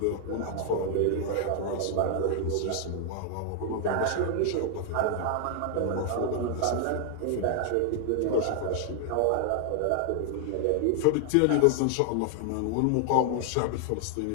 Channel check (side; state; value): both; different; correlation 0.00